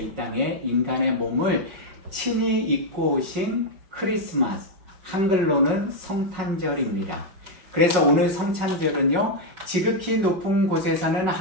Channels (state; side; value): late; left; 5.4 ms